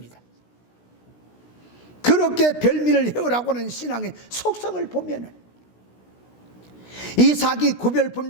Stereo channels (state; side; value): late; right; 16 ms